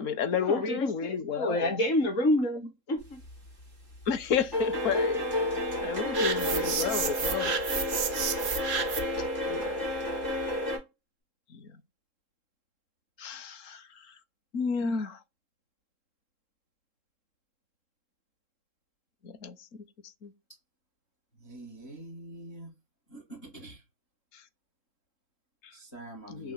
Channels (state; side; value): late; right; 3.7 ms